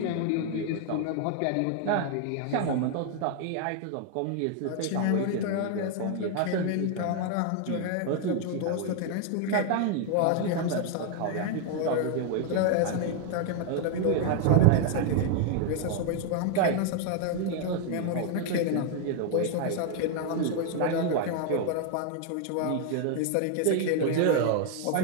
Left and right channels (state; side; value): different; both; correlation 0.01